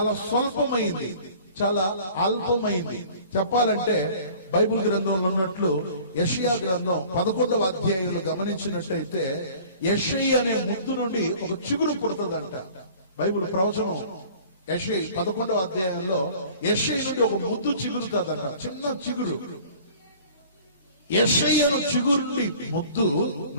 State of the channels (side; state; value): both; inverted; correlation -0.48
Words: స్వల్పమైంది, చాలా అల్పమైంది. చెప్పాలంటే బైబిల్ గ్రంథంలో ఉన్నట్లు యెషయా గ్రంథం 11వ అధ్యాయంలో గమనించినట్టయితే, యెషయి అనే ముద్దు నుండి ఒక చిగురు పుడుతుందంట. బైబిల్ ప్రవచనం యెషయి 11వ అధ్యాయంలో యెషయి నుండి ఒక ముద్దు చిగురుతుందంట, చిన్న చిగురు. యెషయి చిగురు ముద్దు